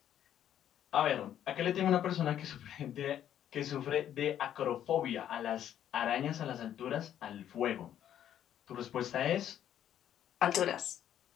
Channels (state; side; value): quieter; right; 10.6 dB